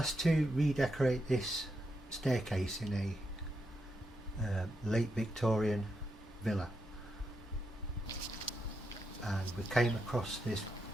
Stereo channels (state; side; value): normal; both; correlation 0.84